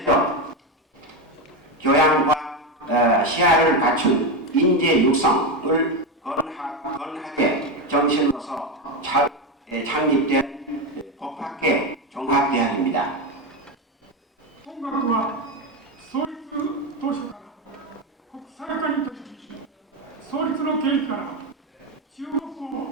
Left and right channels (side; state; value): both; normal; correlation 0.13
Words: 교양과 시야를 갖춘 인재 육성을 건하게 정신으로서 창립된 법학계 종합대학입니다. 本学は創立当初から国際化に取り組み、創立の経緯から中国を